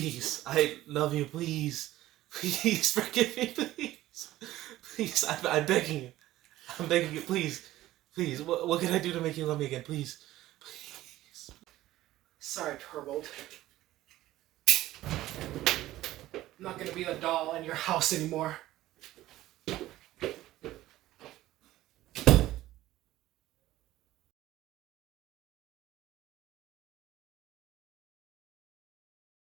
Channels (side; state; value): left; quieter; 15.5 dB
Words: I love you, please, please forgive me, please, please, I'm begging you, please, what can I do to make you love me again, please, please. Sorry, Torvald. I'm not gonna be the doll in your house anymore.